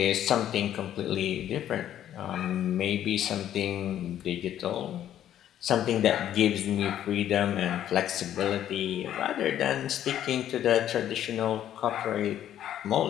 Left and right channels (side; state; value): right; quieter; 11.2 dB